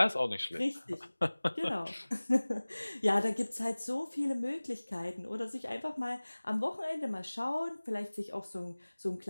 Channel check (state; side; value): inverted; both; correlation -1.00